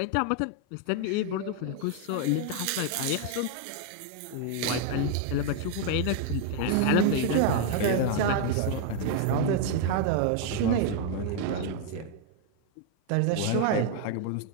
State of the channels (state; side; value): different; both; correlation 0.00